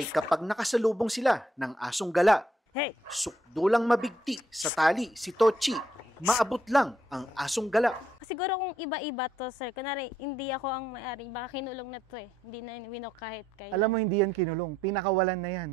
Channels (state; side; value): normal; both; correlation 0.73